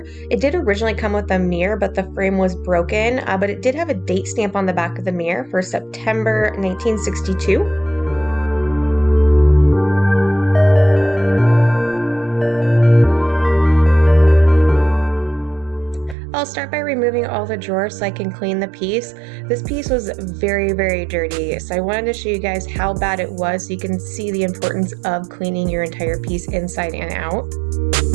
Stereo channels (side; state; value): left; drops out; at 16.2 s